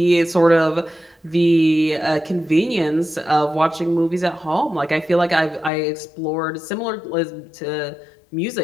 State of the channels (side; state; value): right; drops out; at 5.7 s